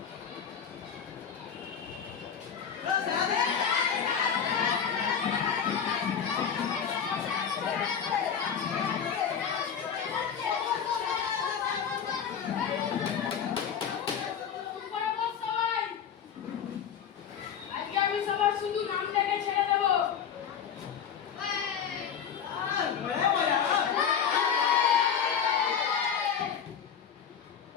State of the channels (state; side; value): quieter; right; 7.7 dB